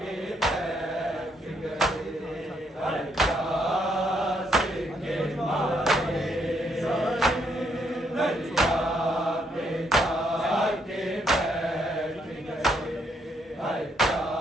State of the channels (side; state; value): both; normal; correlation 0.74